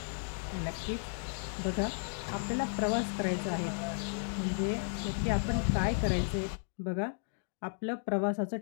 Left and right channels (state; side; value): silent; right; digital silence